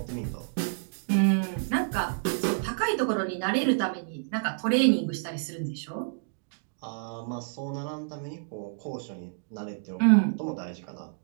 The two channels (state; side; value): silent; left; digital silence